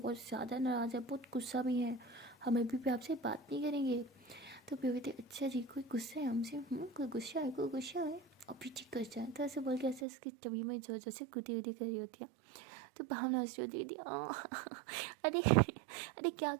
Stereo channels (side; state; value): left; drops out; at 10.1 s